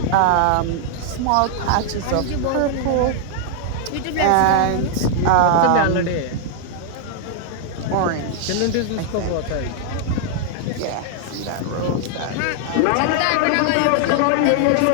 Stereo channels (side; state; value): both; different; correlation 0.00